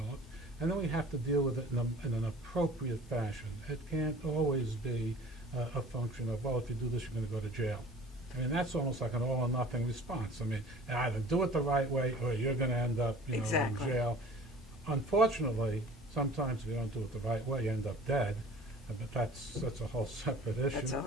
And then we have to deal with it in an appropriate fashion. It can't always be a function of, well, if you do this, you're going to go to jail. I mean, that's almost like an all or nothing response. I mean, either do it the right way or you're going to end up, Exactly. in jail. Unfortunately, sometimes if you don't do it the right way, you end up dead. But that's a whole separate issue. That's a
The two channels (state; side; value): normal; both; correlation 0.46